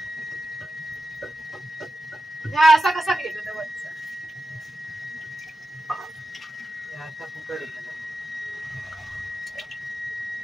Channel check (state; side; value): normal; both; correlation 0.91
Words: हा असा कसा केलं तर वरचा आता फुकट आहे.